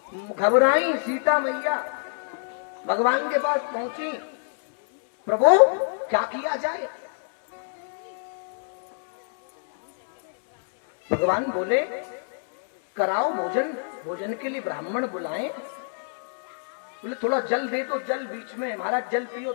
घबराई सीता मैया, भगवान के पास पहुंची, प्रभु क्या किया जाए? भगवान बोले, कराओ भोजन, भोजन के लिए ब्राह्मण बुलाएं। बोले थोड़ा जल दे तो, जल बीच में, महाराज जल पियो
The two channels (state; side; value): silent; right; 61 dB below the other